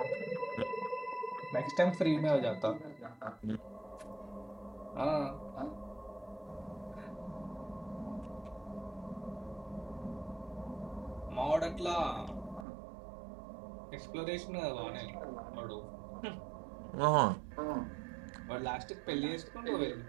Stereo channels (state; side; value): drops out; left; at 12.7 s